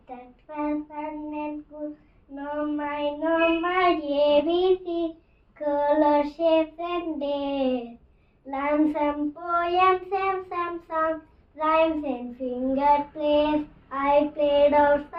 that was fun and cool. No my ABC, color, shapes and days. Learn some poems and some songs, rhymes and finger plays. I played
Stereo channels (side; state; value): both; identical; correlation 1.00